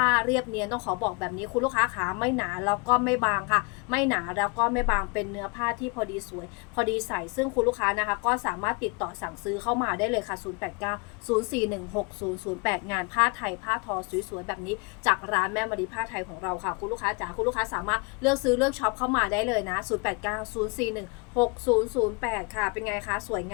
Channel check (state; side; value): quieter; right; 31.1 dB